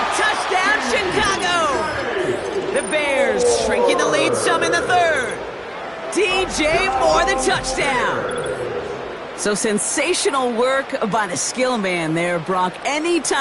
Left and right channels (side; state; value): both; identical; correlation 1.00